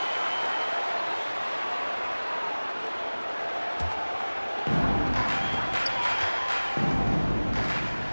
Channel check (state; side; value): inverted; both; correlation -1.00